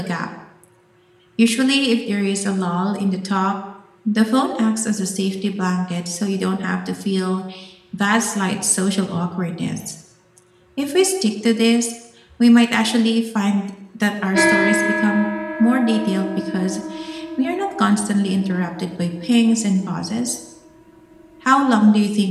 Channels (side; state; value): both; identical; correlation 1.00